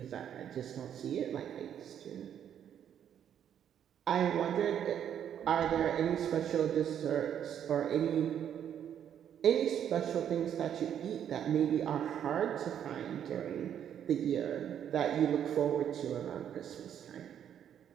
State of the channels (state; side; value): quieter; left; 9.4 dB